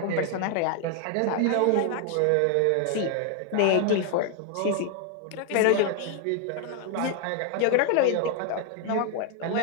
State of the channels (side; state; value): both; different; correlation 0.00